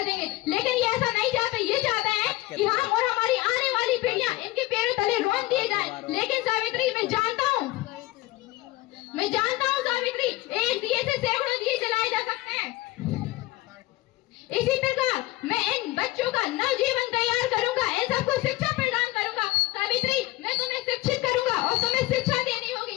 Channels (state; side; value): quieter; right; 18.5 dB